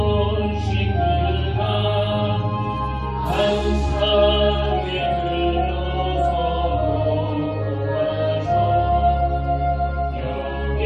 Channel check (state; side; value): identical; both; correlation 1.00